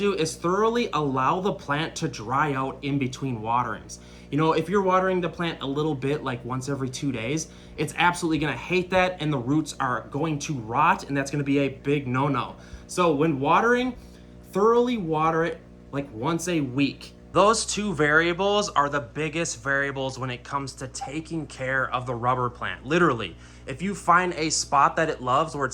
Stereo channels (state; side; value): identical; both; correlation 1.00